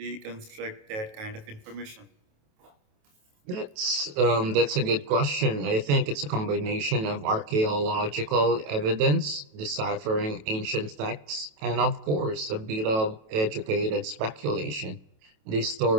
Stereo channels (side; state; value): left; late; 28 ms